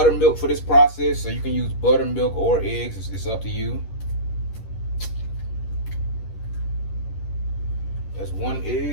for this process, so you can use buttermilk or eggs, it's up to you. That's one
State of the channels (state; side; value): late; right; 11 ms